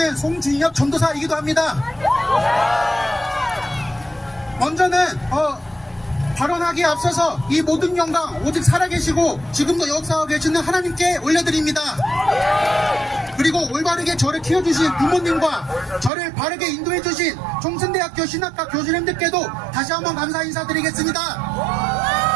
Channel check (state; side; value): drops out; left; at 16.1 s